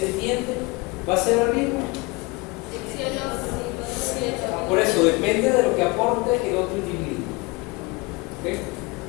va a ser el mismo. Por eso depende de lo que aporte el otro individuo. ¿Ok?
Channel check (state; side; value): quieter; right; 25.7 dB